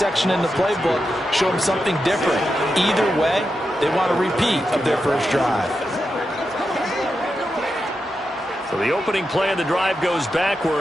in the playbook, show them something different? Either way, they want a repeat of their first drive. So the opening play of the drive goes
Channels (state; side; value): normal; both; correlation 0.88